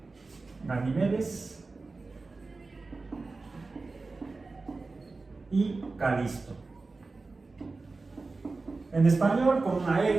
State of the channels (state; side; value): quieter; left; 3.7 dB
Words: Ganimedes y Calisto. En español con una